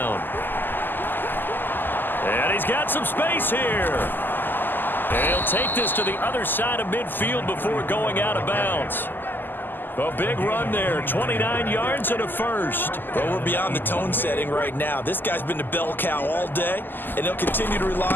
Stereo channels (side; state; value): right; late; 0.091 ms